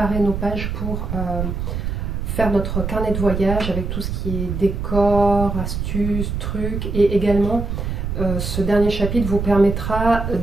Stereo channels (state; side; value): noise; right; rumble, 3 dB below the sound